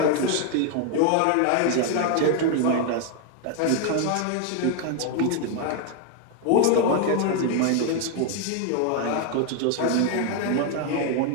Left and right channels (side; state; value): both; different; correlation 0.00